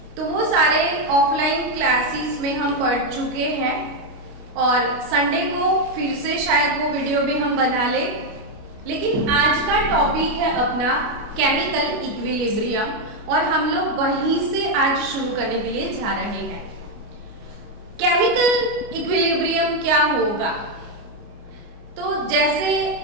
तो वो सारे ऑफलाइन क्लासेस में हम पढ़ चुके हैं और संडे को फिर से शायद वो वीडियो भी हम बना लें। लेकिन आज का टॉपिक है अपना केमिकल इक्विलिब्रियम और हम लोग वहीं से आज शुरू करने के लिए जा रहे हैं। केमिकल इक्विलिब्रियम क्या होगा? तो जैसे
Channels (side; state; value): left; late; 29 ms